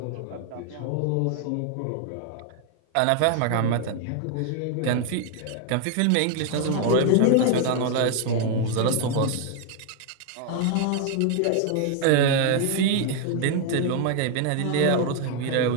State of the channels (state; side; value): different; both; correlation 0.00